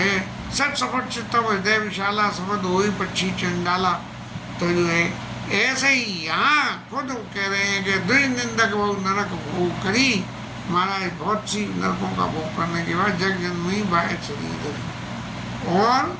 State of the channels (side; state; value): both; identical; correlation 1.00